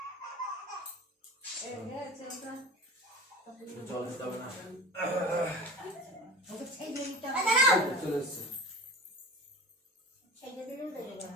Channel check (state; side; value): normal; both; correlation 0.36